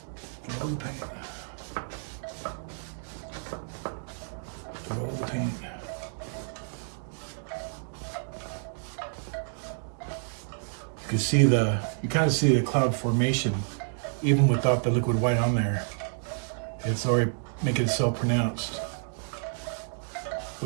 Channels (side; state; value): left; silent; digital silence